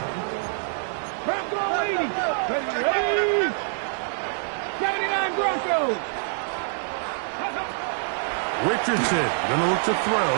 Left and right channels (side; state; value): left; silent; digital silence